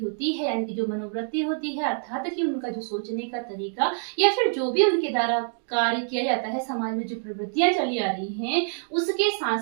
है, यानी कि जो मनोवृत्ति होती है, अर्थात कि उनका जो सोचने का तरीका या फिर जो भी उनके द्वारा कार्य किया जाता है, समाज में जो प्रवृत्तियां चली आ रही हैं, उसके साथ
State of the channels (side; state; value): left; silent; digital silence